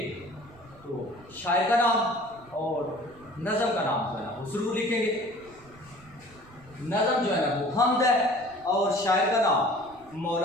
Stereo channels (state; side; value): noise; right; rumble, 25 dB below the sound